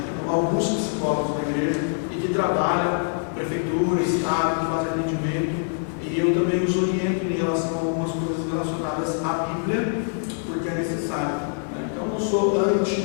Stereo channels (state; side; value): silent; right; 62 dB below the other